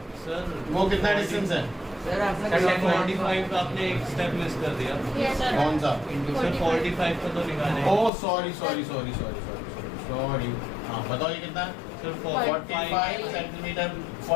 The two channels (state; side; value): drops out; right; at 8.1 s